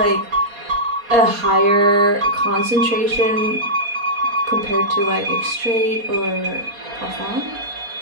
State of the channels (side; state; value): left; late; 4.2 ms